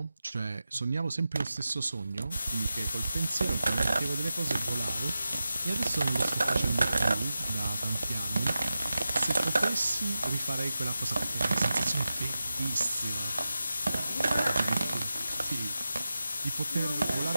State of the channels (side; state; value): both; inverted; correlation -0.92